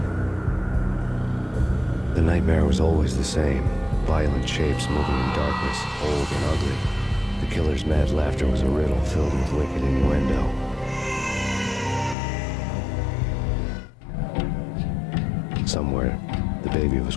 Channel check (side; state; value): right; drops out; at 12.2 s